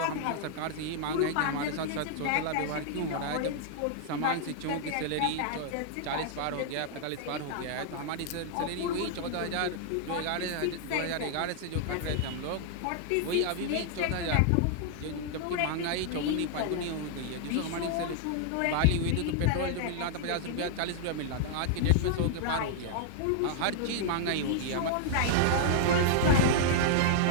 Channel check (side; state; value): both; different; correlation -0.01